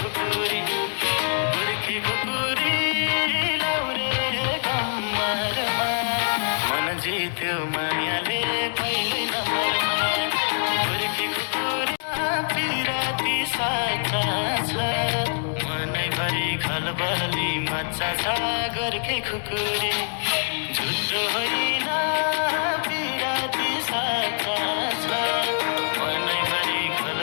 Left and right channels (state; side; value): silent; right; digital silence